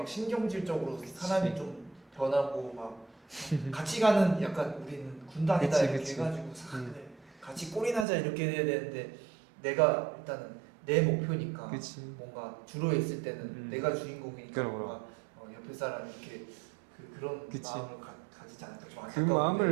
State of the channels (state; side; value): drops out; left; at 8.1 s